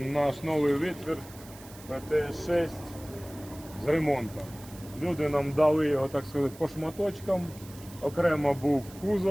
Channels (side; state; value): right; noise; hiss, 20 dB below the sound